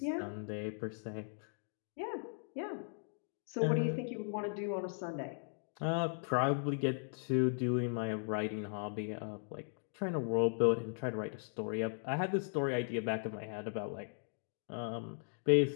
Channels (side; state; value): right; silent; digital silence